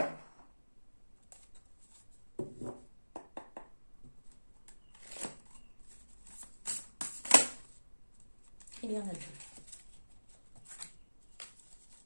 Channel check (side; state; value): both; inverted; correlation -1.00